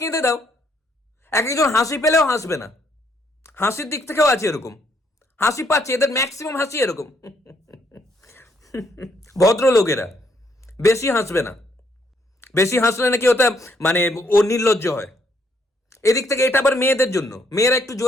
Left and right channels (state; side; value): normal; both; correlation 0.71